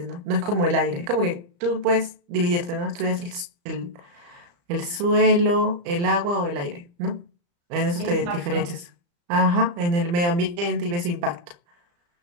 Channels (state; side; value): late; left; 35 ms